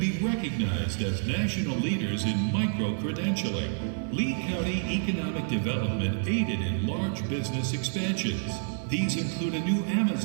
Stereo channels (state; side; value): silent; left; digital silence